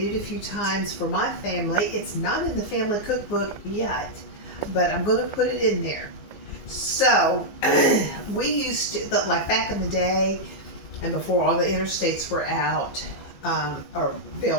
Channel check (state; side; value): late; right; 15 ms